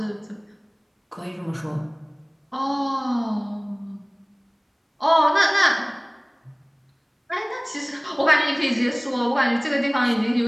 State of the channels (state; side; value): identical; both; correlation 1.00